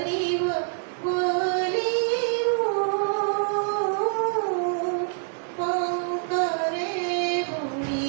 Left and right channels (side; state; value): left; silent; digital silence